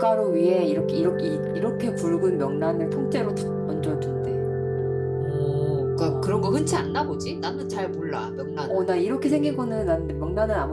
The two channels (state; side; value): identical; both; correlation 1.00